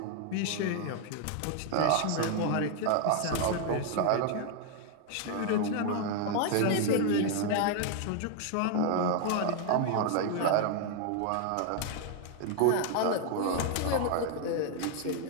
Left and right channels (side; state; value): both; different; correlation 0.00